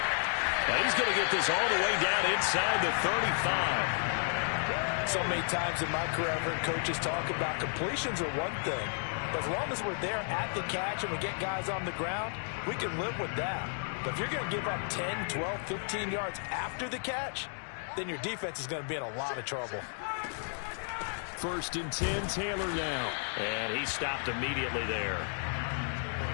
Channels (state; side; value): silent; right; 56 dB below the other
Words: And he's going to get this all the way down inside the 35. So many times in my career, I've heard coaches talk about completions are one thing. But as long as we're there at the catch and we get guys on the ground, we can live with that. But if you're going to give up 10, 12, 15 yards after the catch, then your defense is going to be in a lot of trouble. 1st and 10, Taylor now. And he stopped immediately there.